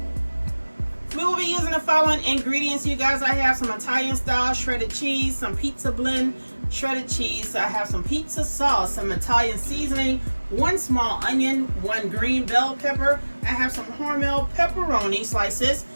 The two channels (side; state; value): both; inverted; correlation -1.00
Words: We will be using the following ingredients, you guys. I have some Italian style shredded cheese, some pizza blend shredded cheese. I have some pizza sauce, some Italian seasoning, 1 small onion, 1 green bell pepper. I have some Hormel pepperoni slices.